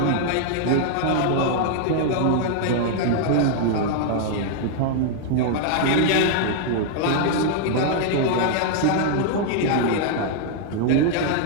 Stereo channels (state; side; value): different; both; correlation -0.01